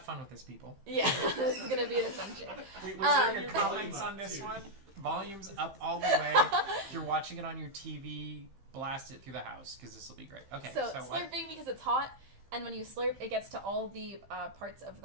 fun with this, people. Yeah, this is gonna be an adventure. Wait, was there your comments on this one? Volume's up all the way. If you're watching it on your TV, blast it through the house because this will be great. Okay, So what? slurping because it's hot, and when you slurp, it gets to all the parts of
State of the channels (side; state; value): left; late; 15 ms